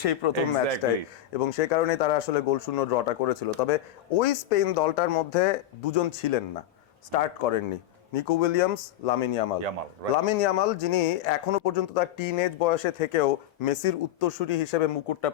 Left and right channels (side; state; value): right; quieter; 12.2 dB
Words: সেই প্রথম ম্যাচটাই, এবং সেই কারণেই তারা আসলে গোল শূন্য ড্রটা করেছিল। তবে ওই স্পেন দলটার মধ্যে দুজন ছিলেন না, স্টার্ট করেননি, Nico Williams, Lamine Yamal. Lamine Yamal, যিনি এখনো পর্যন্ত তার টিনএজ বয়সে থেকেও মেসির উত্তরসূরি হিসেবে মুকুটটা